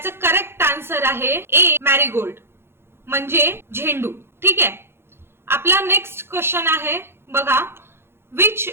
करेक्ट आन्सर आहे ए मॅरीगोल्ड म्हणजे झेंडू. ठीक आहे, आपला नेक्स्ट क्वेश्चन आहे बघा, which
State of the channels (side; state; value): left; late; 0.12 ms